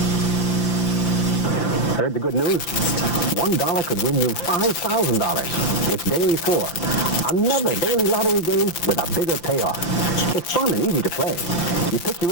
Heard the good news? $1 could win you $5,000. It's daily 4. Another daily lottery game with a bigger payoff. It's fun and easy to play. You pick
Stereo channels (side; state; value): right; late; 5.8 ms